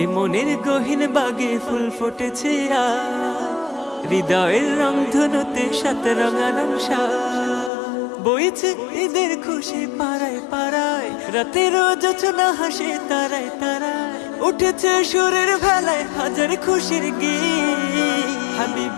এ মনের গহীন বাগে ফুল ফুটেছে হৃদয়ের রংধনুতে সাথে রঙারং সাজ। বইছে ঈদের খুশি পাড়ায় পাড়ায়, রাতের জোছনা হাসে তারায় তারায়, উঠেছে সুরের ভেলায় হাজার খুশির গীত।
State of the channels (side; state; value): right; drops out; at 7.7 s